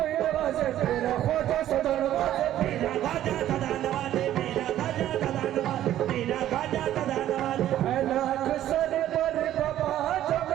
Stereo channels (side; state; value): left; quieter; 12.4 dB